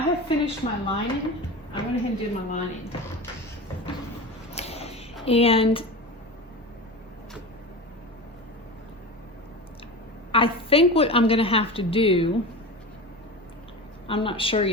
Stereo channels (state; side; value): normal; both; correlation 0.28